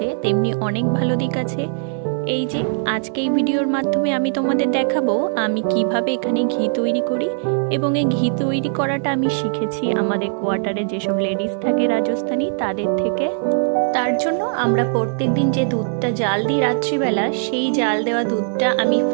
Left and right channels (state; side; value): silent; left; 65 dB below the other